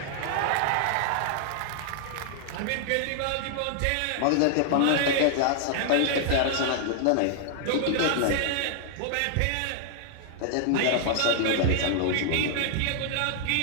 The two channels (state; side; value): different; both; correlation -0.01